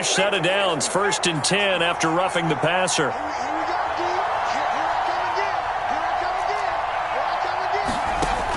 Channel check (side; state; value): both; identical; correlation 1.00